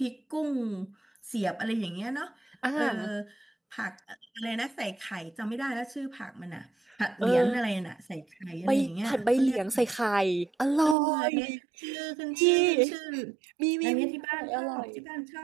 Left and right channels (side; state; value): left; drops out; at 11.0 s